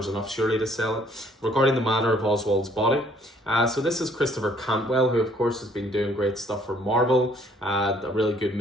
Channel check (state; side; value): normal; both; correlation 0.61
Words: enough surely to sell it, regarding the Manor of Oswald's Body. So this is Christopher Cantwell, who of course has been doing great stuff for Marvel. A really good